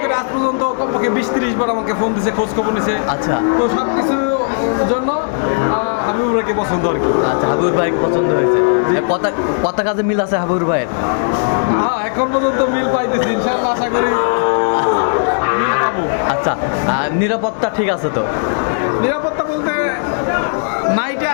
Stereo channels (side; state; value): right; silent; digital silence